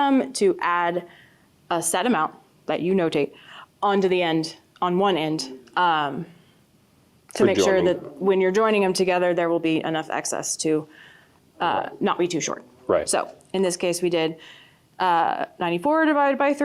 to add a set amount that you notate onto the end, on one end, to make sure joining. that when you're joining them together, there will be enough excess to not be too short. Right. So in this case, we did 94 divided by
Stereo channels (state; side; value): identical; both; correlation 1.00